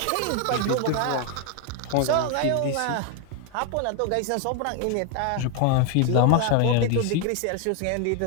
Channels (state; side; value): different; both; correlation 0.01